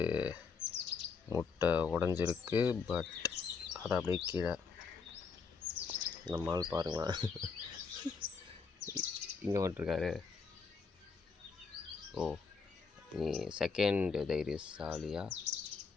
முட்டை உடஞ்சிருக்கு, பட் அதை அப்படியே கீழே நம்மால் பாருங்களேன் இங்கே வந்துட்டுருக்காரு. ஓ, நீ செகண்ட் தைரியசாலியா?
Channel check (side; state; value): right; quieter; 5.3 dB